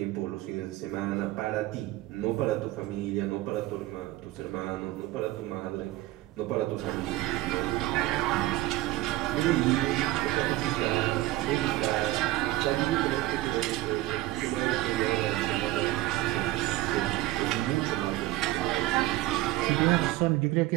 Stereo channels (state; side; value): quieter; left; 17.3 dB